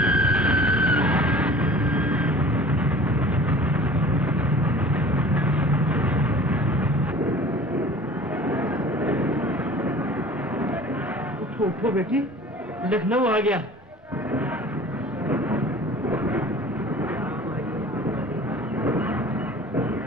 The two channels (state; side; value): normal; both; correlation 0.44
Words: उठो बेटी, लखनऊ आ गया।